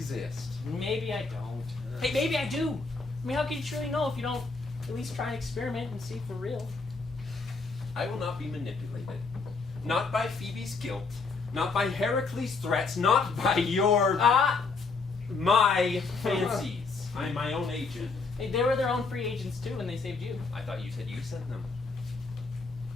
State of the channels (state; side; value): quieter; right; 4.3 dB